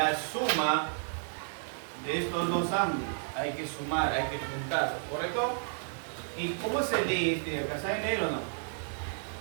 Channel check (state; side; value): silent; left; digital silence